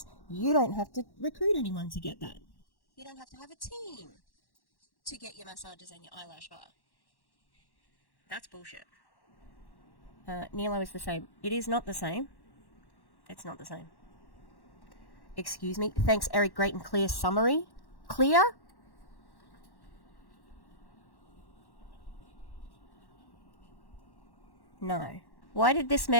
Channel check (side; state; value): right; late; 1.1 ms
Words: you don't have to recruit anyone to get that. You don't have to have a team to get your massages and your eyelash bar. That's bullshit. Nilo is the same. It is not the same. It's not the same. Excuse me. Thanks, Eric. Great and clear summary. Clear? No. Why did this